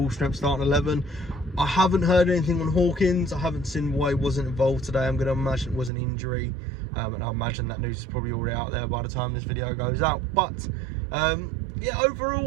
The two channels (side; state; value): left; drops out; at 5.9 s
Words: strength starting 11. I haven't heard anything on Hawkins. I haven't seen why he wasn't involved today. I'm going to imagine it was an injury, and I imagine that news is probably already out there by the time this video goes out. But yeah,